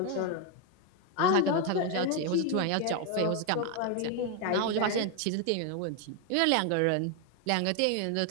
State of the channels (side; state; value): both; different; correlation 0.01